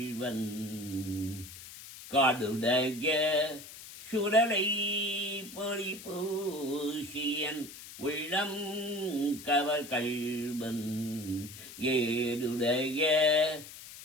காடுடைய சுடலை பொடி பூசியன் உள்ளம் கவகள்வன் ஏடுடைய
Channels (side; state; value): left; noise; hiss, 14 dB below the sound